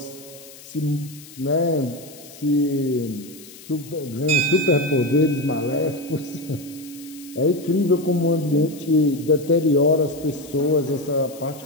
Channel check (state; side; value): noise; left; hiss, 19 dB below the sound